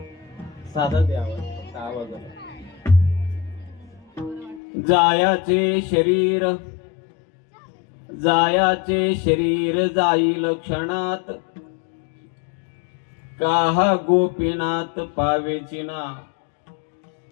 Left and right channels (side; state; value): right; drops out; at 4.6 s